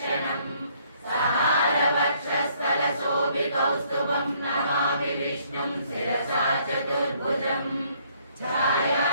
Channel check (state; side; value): inverted; both; correlation -0.65